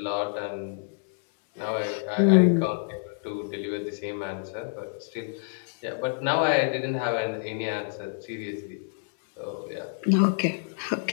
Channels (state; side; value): silent; right; digital silence